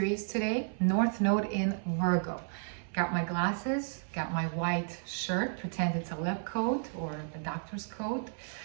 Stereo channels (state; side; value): silent; left; 55 dB below the other